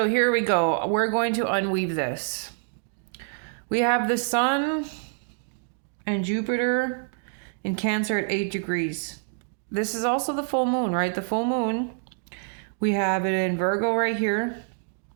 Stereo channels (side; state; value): left; silent; digital silence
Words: here we go. We're going to unweave this. We have the sun and Jupiter in Cancer at 8 degrees. This is also the full moon, right? The full moon. We have it in Virgo right here.